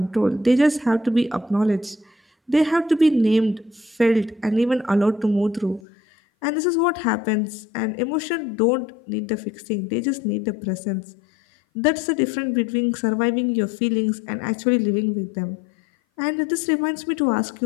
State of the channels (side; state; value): right; drops out; at 5.8 s